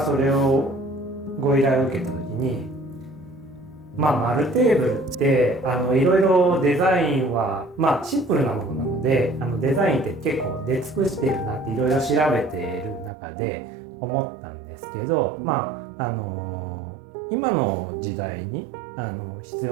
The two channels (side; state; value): left; drops out; at 13.1 s